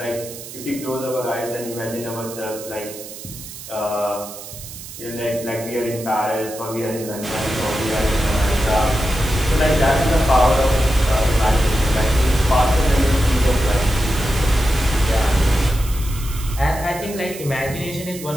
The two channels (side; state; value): right; noise; hiss, 13 dB below the sound